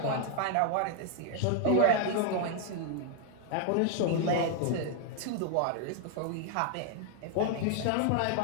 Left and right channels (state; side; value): different; both; correlation 0.00